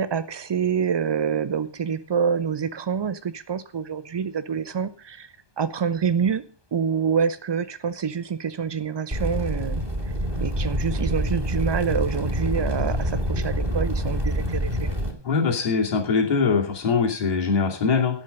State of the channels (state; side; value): late; left; 1.2 ms